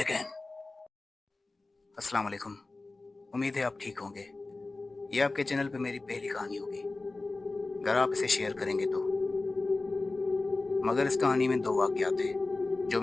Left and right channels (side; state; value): right; quieter; 3.3 dB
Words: अस्सलाम वालेकुम। उम्मीद है आप ठीक होंगे। ये आपके चैनल पे मेरी पहली कहानी होगी, अगर आप इसे शेयर करेंगे तो। मगर इस कहानी में दो वाक़यात हैं जो